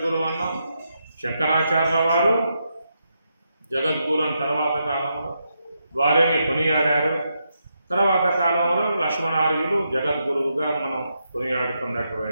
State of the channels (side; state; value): both; inverted; correlation -0.82